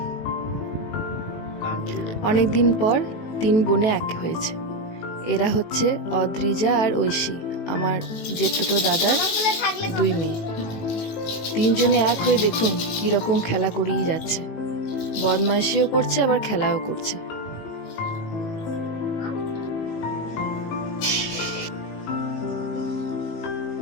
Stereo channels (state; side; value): late; right; 18 ms